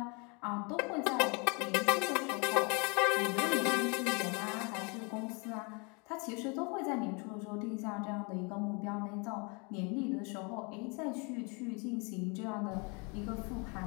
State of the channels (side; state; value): right; quieter; 32.0 dB